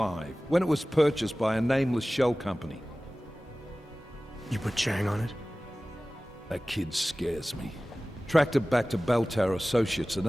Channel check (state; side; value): normal; both; correlation 0.97